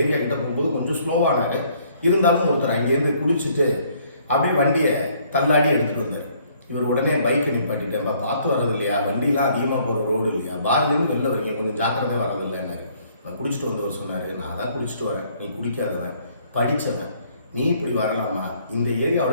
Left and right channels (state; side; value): inverted; both; correlation -0.63